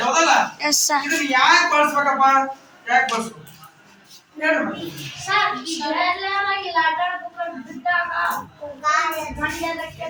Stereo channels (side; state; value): both; identical; correlation 1.00